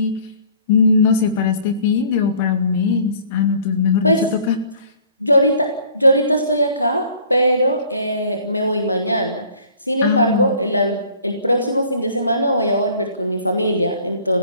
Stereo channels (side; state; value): both; inverted; correlation -0.53